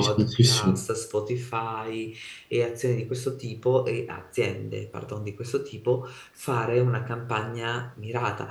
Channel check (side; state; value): both; identical; correlation 1.00